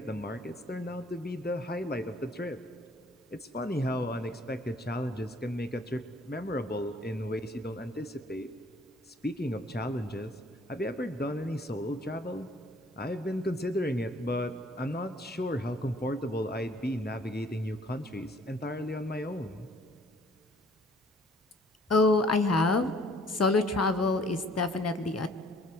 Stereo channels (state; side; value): normal; both; correlation 0.59